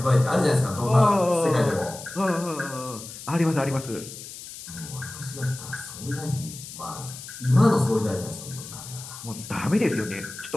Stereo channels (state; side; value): noise; left; hiss, 13 dB below the sound